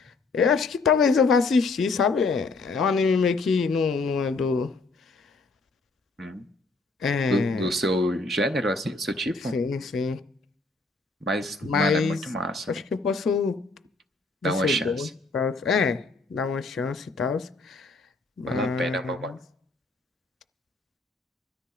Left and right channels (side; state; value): right; quieter; 3.6 dB